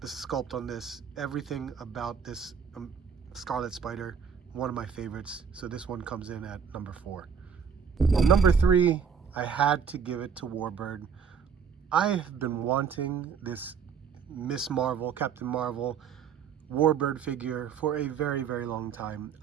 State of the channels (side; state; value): left; quieter; 6.8 dB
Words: the sculpt on this, everything about this Scarlet Spider, one of my favorites. So this one comes in at number 4. Number 3, I had to give it to Warbird. I have been wanting this Miss Marvel, Captain Marvel, Warbird figure for a very, very long time.